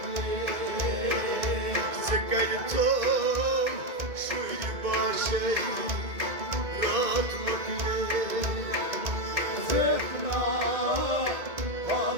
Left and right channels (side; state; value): left; late; 2.1 ms